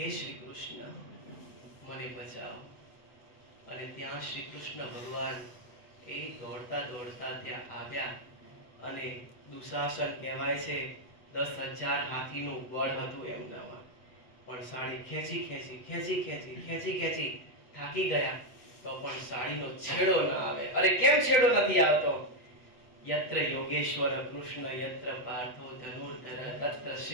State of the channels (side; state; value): right; late; 8.1 ms